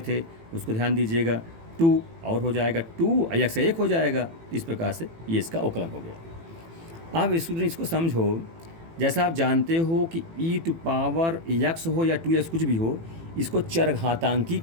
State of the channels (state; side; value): late; left; 18 ms